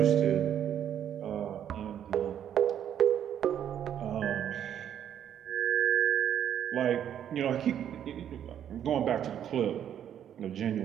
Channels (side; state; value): left; quieter; 9.7 dB